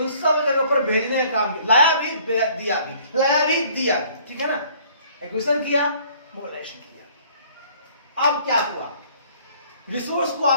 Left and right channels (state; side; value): inverted; both; correlation -0.57